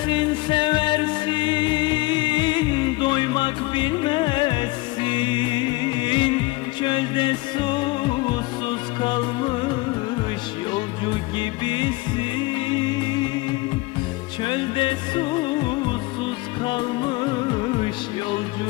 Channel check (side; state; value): right; quieter; 22.1 dB